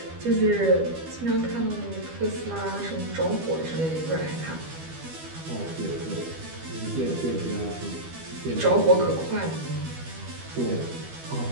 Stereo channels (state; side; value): late; left; 12 ms